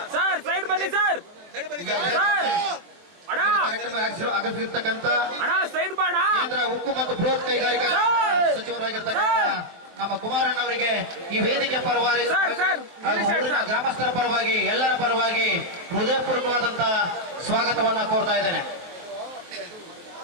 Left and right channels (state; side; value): late; left; 23 ms